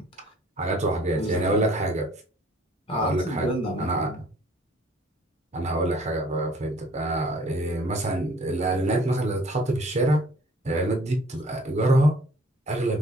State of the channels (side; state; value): both; normal; correlation 0.55